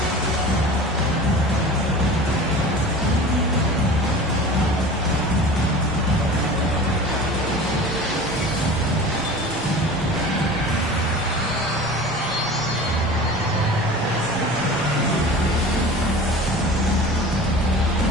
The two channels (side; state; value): both; normal; correlation 0.38